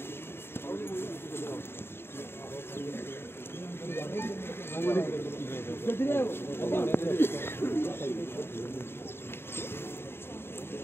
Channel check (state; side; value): late; right; 0.11 ms